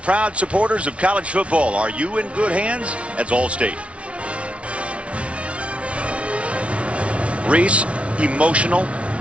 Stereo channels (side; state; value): left; late; 0.062 ms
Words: supporters of college football. Are you in good hands? That's Allstate. Reese, emotional.